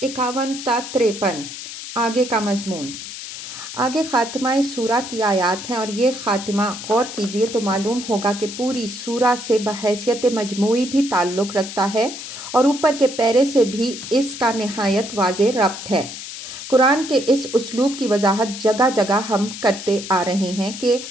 51 تا 53۔ آگے کا مضمون، آگے خاتمہ سورہ کی آیات ہیں، اور یہ خاتمہ غور کیجئے تو معلوم ہوگا کہ پوری سورہ سے بحیثیت مجموعی بھی تعلق رکھتا ہے اور اوپر کے پیرے سے بھی اس کا نہایت واضح ربط ہے۔ قرآن کے اس اسلوب کی وضاحت جگہ جگہ ہم کرتے آ رہے ہیں کہ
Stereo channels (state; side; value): noise; left; hiss, 10 dB below the sound